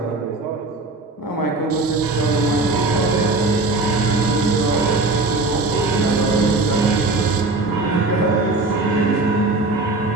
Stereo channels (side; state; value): left; quieter; 3.3 dB